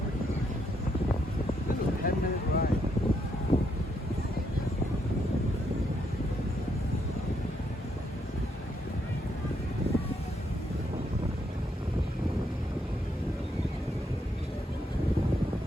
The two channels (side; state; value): both; normal; correlation 0.76